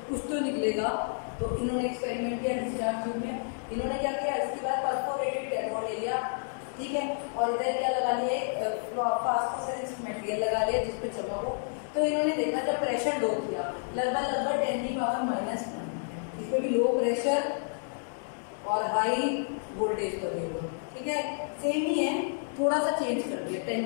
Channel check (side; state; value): right; silent; digital silence